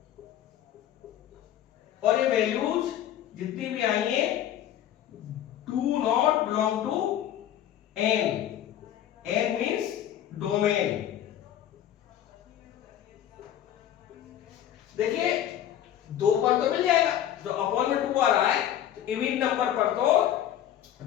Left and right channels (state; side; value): quieter; right; 11.2 dB